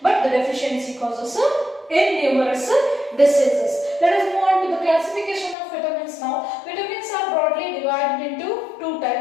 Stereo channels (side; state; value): right; drops out; at 5.6 s